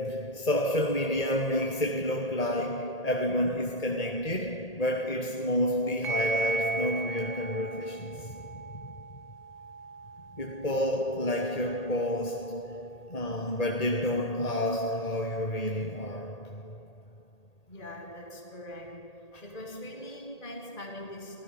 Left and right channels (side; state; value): right; late; 1.8 ms